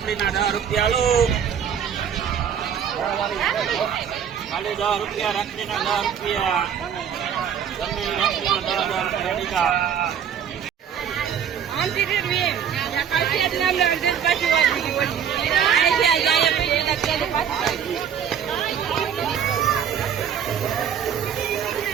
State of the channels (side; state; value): left; quieter; 8.3 dB